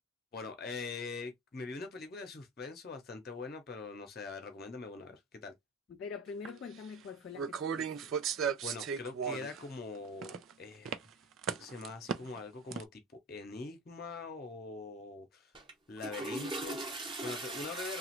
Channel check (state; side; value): normal; both; correlation 0.33